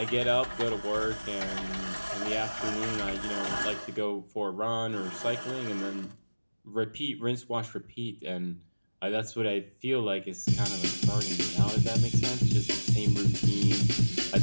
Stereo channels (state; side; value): inverted; both; correlation -1.00